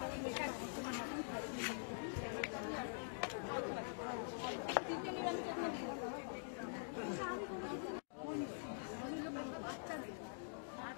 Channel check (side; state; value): right; silent; digital silence